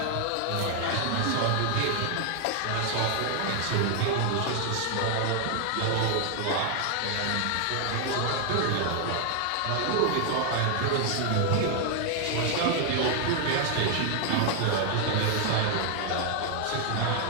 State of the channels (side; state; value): both; different; correlation 0.00